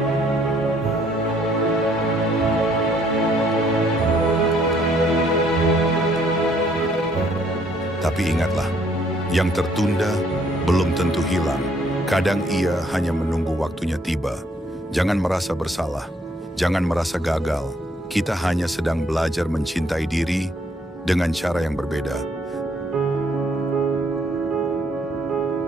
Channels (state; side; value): normal; both; correlation 0.66